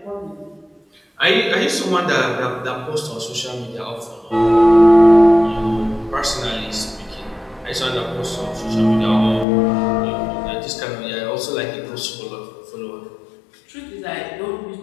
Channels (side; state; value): right; drops out; at 9.5 s